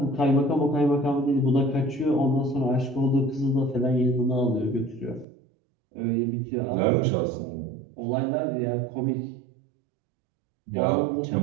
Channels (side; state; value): left; drops out; at 5.2 s